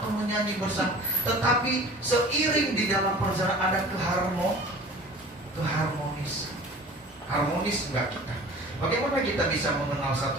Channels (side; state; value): both; normal; correlation 0.43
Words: menyanyi bersama, tetapi seiring di dalam perjalanan ada keharmonisan. Harmonis enggak kita? Bagaimana kita bisa mengenal